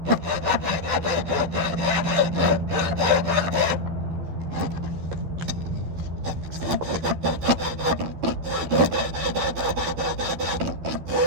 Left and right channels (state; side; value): late; left; 12 ms